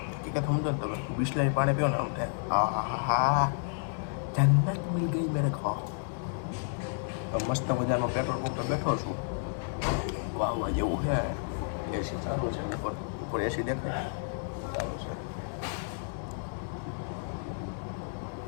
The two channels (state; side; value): silent; right; digital silence